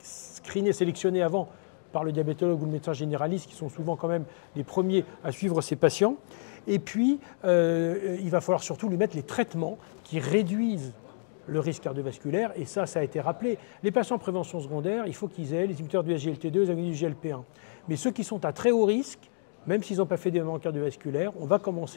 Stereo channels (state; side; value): silent; right; digital silence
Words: screené, sélectionné avant par le diabétologue ou le médecin généraliste, qui sont souvent quand même les premiers à suivre ces patients. Et puis, il va falloir surtout lui mettre les traitements qui réduisent le risque cardiovasculaire, et ça a été rappelé. Les patients en prévention secondaire, il faut qu'ils aient les inhibiteurs du SGLT2, les agonistes du GLP1. Mais ceux qui sont à très haut risque, même s'ils n'ont pas fait d'événements cardiovasculaires, on va